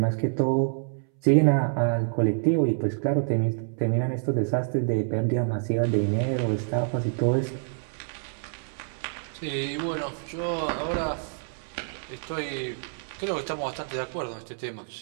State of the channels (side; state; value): left; silent; 60 dB below the other